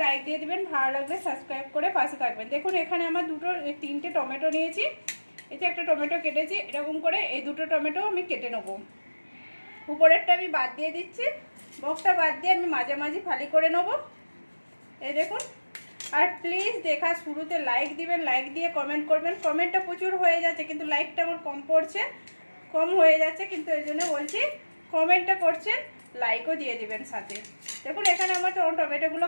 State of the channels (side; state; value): both; inverted; correlation -1.00